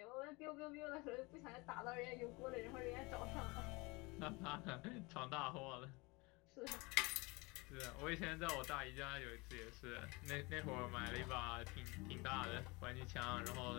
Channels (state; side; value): quieter; right; 25.7 dB